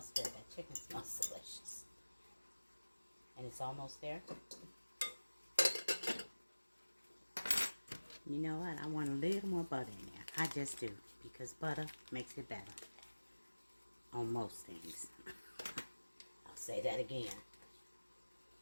good. That chicken smells delicious. And it's almost there. You know what? I want a little more butter in there. I just do, because butter makes it better on most things. I'll say that again.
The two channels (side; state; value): both; inverted; correlation -1.00